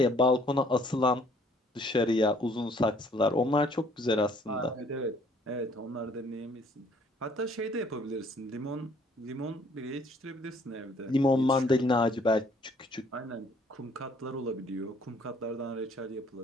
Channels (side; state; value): both; normal; correlation 0.60